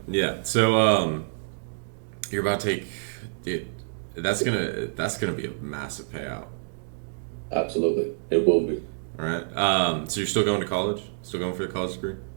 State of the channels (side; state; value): left; silent; digital silence